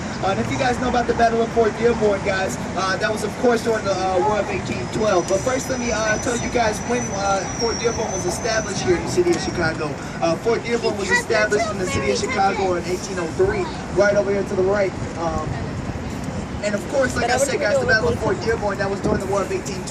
And if you guys know about the Battle of Fort Dearborn, guys, that was of course during the War of 1812. But first let me tell you guys when Fort Dearborn was established here in the city of Chicago. Fort Dearborn was established in the city of Chicago in 1803, right over here to the right. And of course, like I said, guys, the Battle of Fort Dearborn, that was during the War of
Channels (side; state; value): both; identical; correlation 1.00